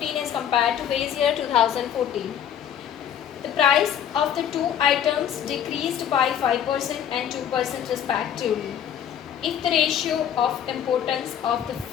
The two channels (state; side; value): quieter; right; 9.4 dB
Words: as compared to base year 2014. The price of the 2 items decreased by 5% and 2% respectively. If the ratio of importance of